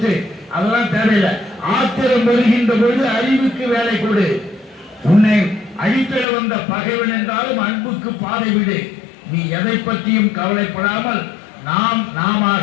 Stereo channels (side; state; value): right; drops out; at 6.2 s